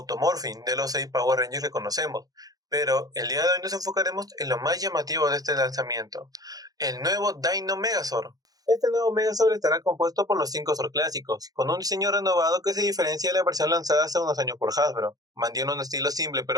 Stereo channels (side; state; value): left; late; 0.18 ms